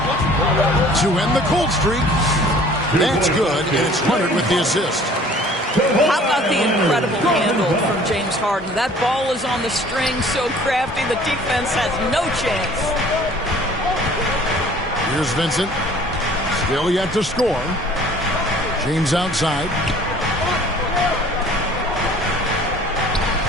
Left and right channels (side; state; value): both; normal; correlation 0.51